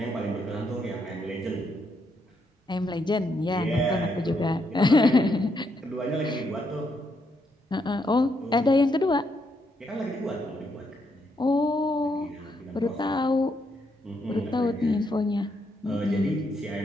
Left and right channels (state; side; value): normal; both; correlation 0.77